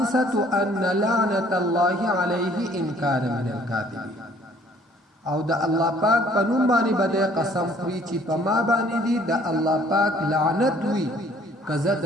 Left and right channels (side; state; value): both; normal; correlation 0.58